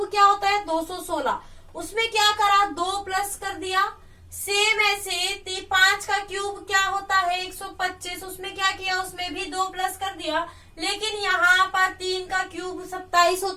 क्या होता है 216। उसमें क्या करा, 2 प्लस कर दिया। सेम ऐसे 5 का क्यूब क्या होता है 125। उसमें क्या किया, उसमें भी 2 प्लस कर दिया। लेकिन यहाँ पर 3 का क्यूब 27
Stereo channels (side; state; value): both; identical; correlation 1.00